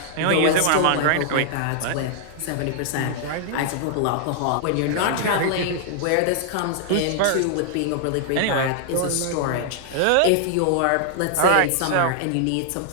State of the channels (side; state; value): both; different; correlation -0.01